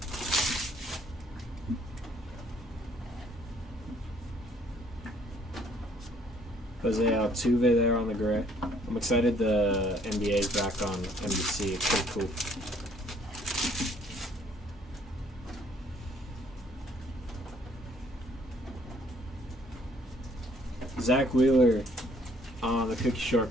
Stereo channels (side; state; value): both; normal; correlation 0.62